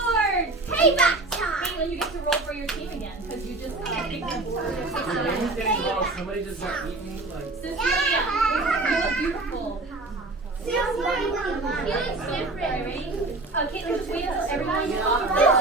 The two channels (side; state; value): left; quieter; 3.1 dB